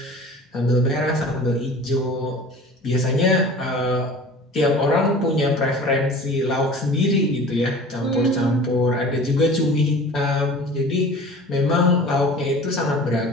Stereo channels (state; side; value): normal; both; correlation 0.42